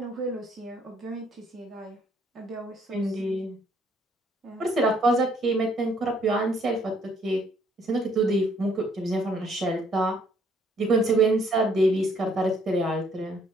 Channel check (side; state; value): both; normal; correlation 0.66